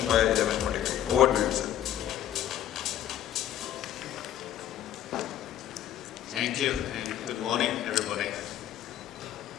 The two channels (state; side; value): quieter; right; 11.4 dB